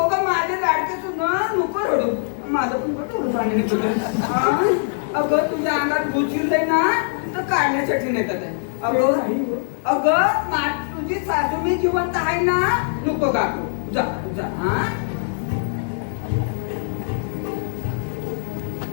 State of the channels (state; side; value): silent; right; digital silence